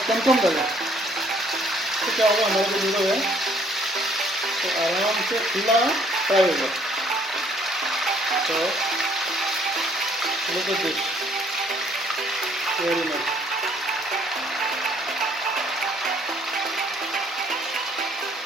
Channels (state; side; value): normal; both; correlation 0.63